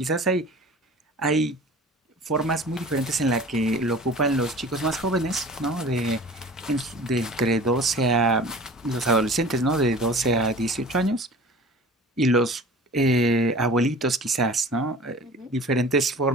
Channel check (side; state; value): both; normal; correlation 0.42